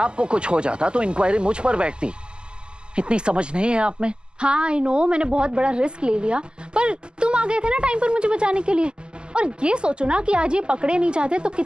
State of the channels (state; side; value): late; left; 0.048 ms